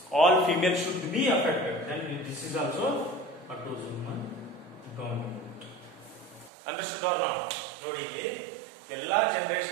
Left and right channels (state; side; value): drops out; left; at 6.5 s